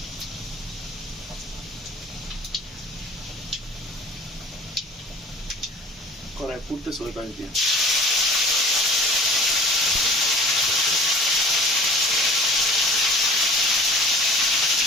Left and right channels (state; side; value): normal; both; correlation 0.45